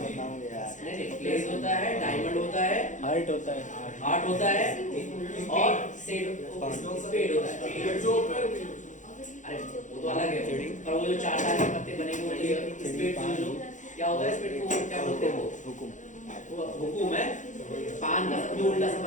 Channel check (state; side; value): late; right; 0.36 ms